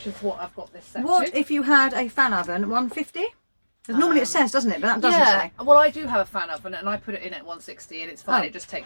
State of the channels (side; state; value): both; inverted; correlation -1.00